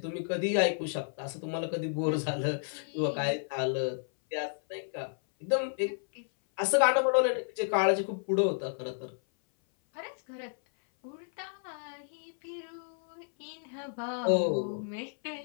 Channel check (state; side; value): silent; right; 57 dB below the other